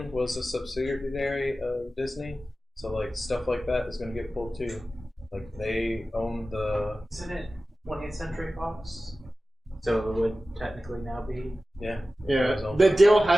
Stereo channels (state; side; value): normal; both; correlation 0.95